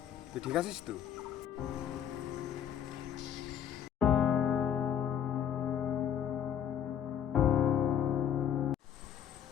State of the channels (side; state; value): right; quieter; 9.3 dB